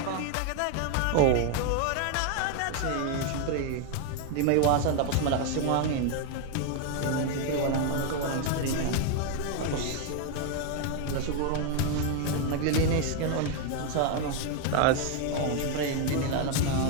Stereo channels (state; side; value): different; both; correlation 0.01